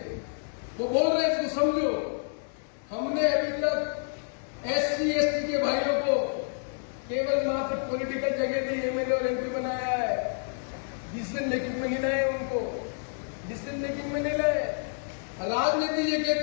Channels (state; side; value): silent; right; digital silence